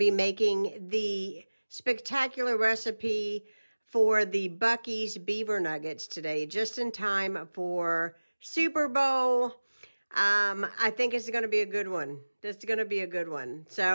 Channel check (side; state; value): both; inverted; correlation -1.00